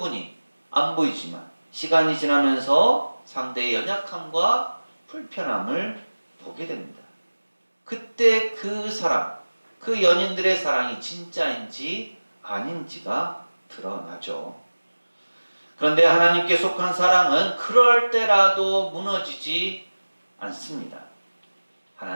안 보이지만 시간이 지나면서 상대의 연약함과 불편함을 보게 됩니다. 그때 그 사랑, 그 연인들의 사랑이 진짜인지 아닌지가 드러나죠. 그런데 하나님께 속한 사랑은 그럴 때라도 무너지지 않습니다.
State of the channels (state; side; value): inverted; both; correlation -1.00